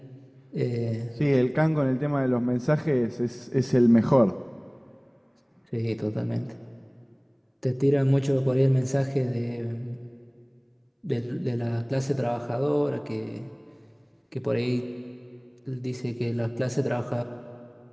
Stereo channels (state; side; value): identical; both; correlation 1.00